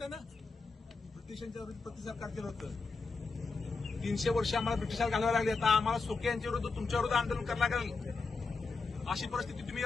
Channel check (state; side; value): quieter; right; 4.3 dB